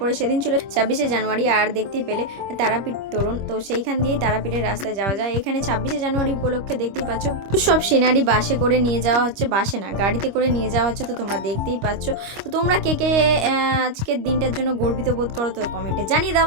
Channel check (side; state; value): left; late; 25 ms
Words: সেদিন ছিল 26শে জানুয়ারি, আর দেখতেই পেলে তারাপীঠ তোরণ। তো সেইখান দিয়েই তারাপীঠের রাস্তায় যাওয়া যায়। এখানে 26শে জানুয়ারি উপলক্ষে দেখতেই পাচ্ছ সব সিনারি বাসে করে নিয়ে যাওয়া হচ্ছে, বাসে না গাড়িতে করে নিয়ে যাওয়া হচ্ছে। তো তোমরা দেখতেই পাচ্ছ। তো তোমরা কে কে আজকের দিনটার জন্য গর্বিত বোধ করো তো কমেন্টে জানিয়ে দাও।